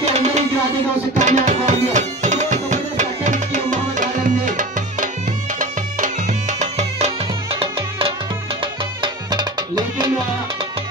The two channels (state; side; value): normal; both; correlation 0.32